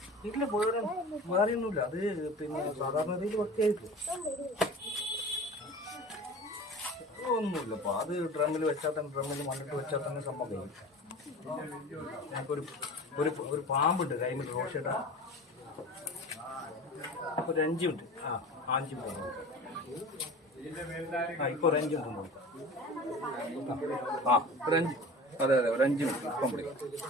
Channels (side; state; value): both; normal; correlation 0.37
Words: ഇല്ല വേറെയൊന്നുമില്ല, അത് പിന്നെ സാധാരണ രീതിയിൽ വൃത്തിയായിട്ട് ഒന്നുമില്ലപ്പോ. അത് ഡ്രമ്മിൽ വെച്ചാൽ തന്നെ, ഡ്രമ്മിൽ മണ്ണിട്ട് വെച്ചാൽ തന്നെ സംഭവം കഴിയും. ഞങ്ങൾക്കൊരു ഒരു പാമ്പുണ്ട് കൈമിൽ റോഷേട്ടാ, ഒരു 5 മിനിറ്റ്. 5 മിനിറ്റ് ഇപ്പോൾ ഒരു 5 മിനിറ്റ് നോക്കാം. ഒരു 5, അതെ ഒരു 5 മിനിറ്റ് ഇപ്പം വിളിക്കാം.